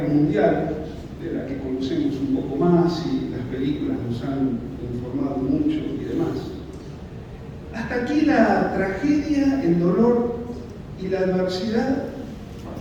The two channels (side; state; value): both; identical; correlation 1.00